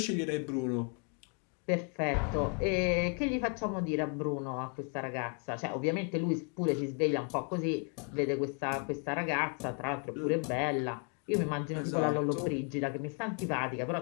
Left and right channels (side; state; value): right; quieter; 39.8 dB